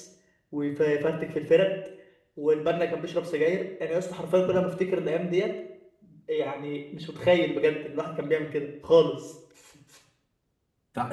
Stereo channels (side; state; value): both; identical; correlation 1.00